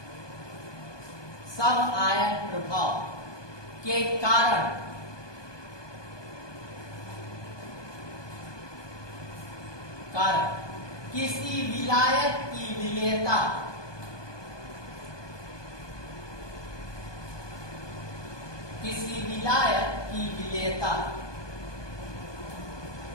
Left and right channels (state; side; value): late; right; 1.2 ms